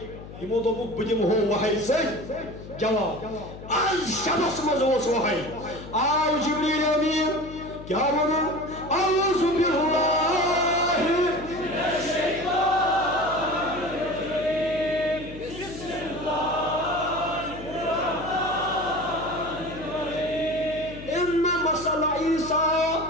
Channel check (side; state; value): left; noise; hum, 14 dB below the sound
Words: یمو دوپک بہ دمہو وحی سۭتۍ جواب آز شبس مز اوس وحی آو جبریل امین کیا ون اعوذ باللہ